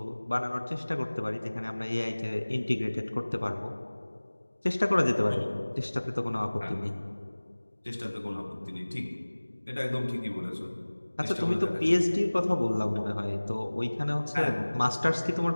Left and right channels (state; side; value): inverted; both; correlation -1.00